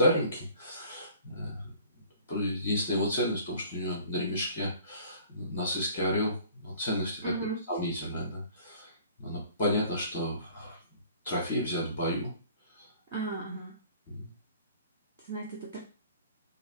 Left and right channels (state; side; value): inverted; both; correlation -0.51